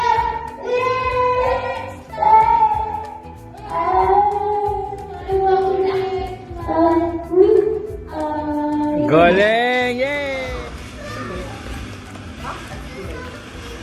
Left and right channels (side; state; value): both; identical; correlation 1.00